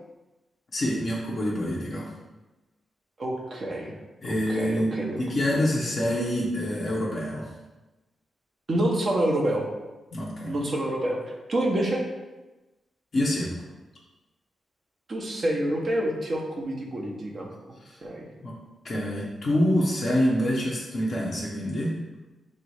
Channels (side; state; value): both; normal; correlation 0.88